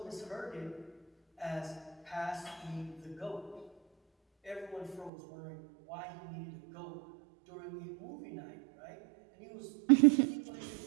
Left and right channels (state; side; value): drops out; left; at 5.1 s